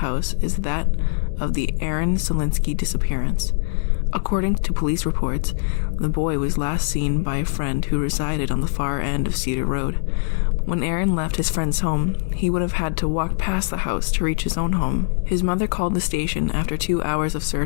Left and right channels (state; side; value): silent; right; digital silence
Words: is that of the Aaron Solinsky disappearance. According to police reports, the boy was last seen by a friend who resided on the far end of Cedar Road. When Aaron left his friend's home, he would have had to walk past the house to reach his own home. His mother called the station after 2 hours of